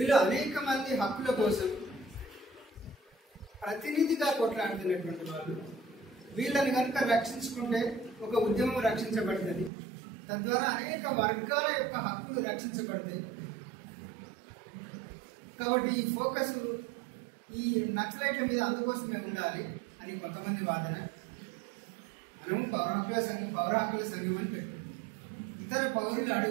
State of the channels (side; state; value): left; drops out; at 9.7 s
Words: అనేక మంది హక్కుల కోసం ప్రతినిధిగా కొట్లాడుతున్నటువంటి వాళ్ళు. వీళ్ళని కనుక రక్షించుకుంటే ఒక ఉద్యమం రక్షించబడుతుంది, తద్వారా అనేక వర్గాల యొక్క హక్కులు రక్షించబడతాయి. కాబట్టి ఈ ఫోకస్ ఈ నక్సలైట్ల మీద అందుకోసమే ఉండాలి అని కొంతమంది వాదన. మనము పౌర హక్కుల సంఘం అని పెట్టుకుంటాం. ఇతర పౌరులు